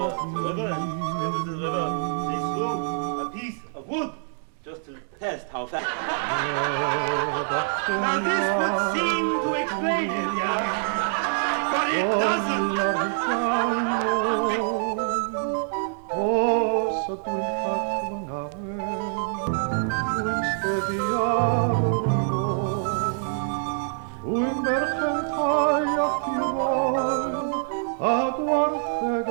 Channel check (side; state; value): left; silent; digital silence